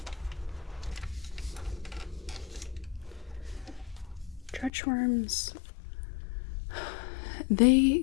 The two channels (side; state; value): right; drops out; at 4.7 s